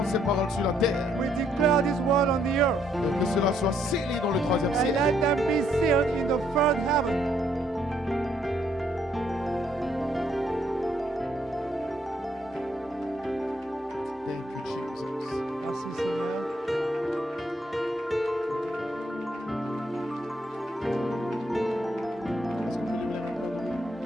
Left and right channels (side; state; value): both; normal; correlation 0.71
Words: ces paroles sur la terre. we declare this word on the earth, Et que cela soit scellé dans le troisième and ciel. let them be sealed in the third heaven. Thank you, Jesus. Merci Seigneur. Est-ce que vous pouvez lever la main?